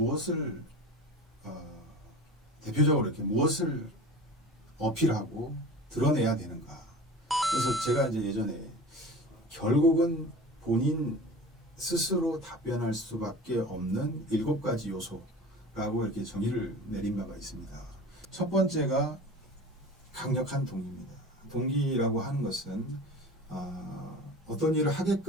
대표적으로 이렇게 무엇을 어필하고 드러내야 되는가. 그래서 제가 이제 예전에 결국은 본인 스스로 답변할 수밖에 없는 7가지 요소라고 이렇게 정의를 내린 바가 있습니다. 첫 번째가 강력한 동기입니다. 동기라고 하는 것은 어떤 일을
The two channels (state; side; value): normal; both; correlation 0.37